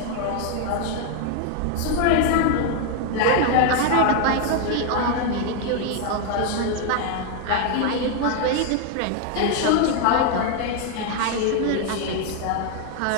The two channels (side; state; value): both; different; correlation 0.00